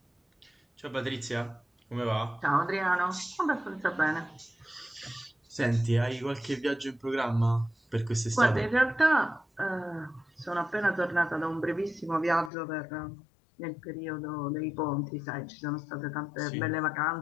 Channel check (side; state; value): right; drops out; at 12.5 s